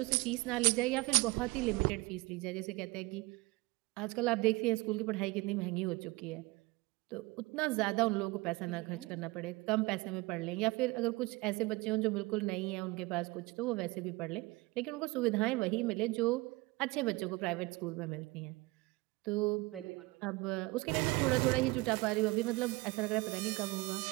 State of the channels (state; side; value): quieter; left; 23.0 dB